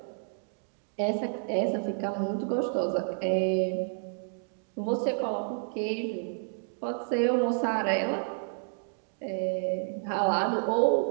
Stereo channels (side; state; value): left; silent; digital silence